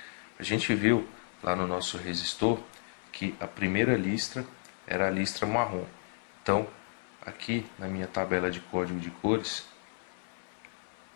a gente viu lá no nosso resistor que a primeira listra era a listra marrom. Então, aqui na minha tabela de código de cores,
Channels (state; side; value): silent; right; 56 dB below the other